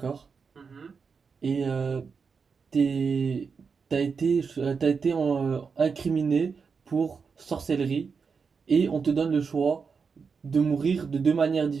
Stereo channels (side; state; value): left; quieter; 5.5 dB